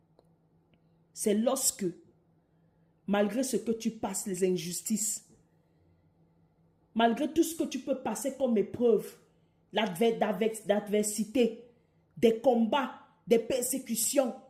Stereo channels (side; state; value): both; identical; correlation 1.00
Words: c'est lorsque, malgré ce que tu passes, les injustices, malgré tout ce que tu peux passer comme épreuve, l'adversité, des combats, des persécutions,